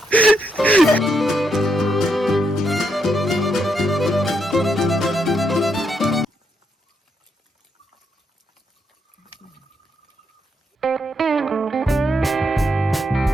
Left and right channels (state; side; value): normal; both; correlation 0.78